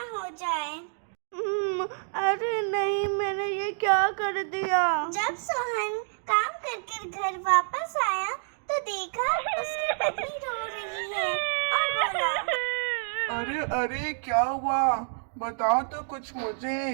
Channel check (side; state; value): left; silent; digital silence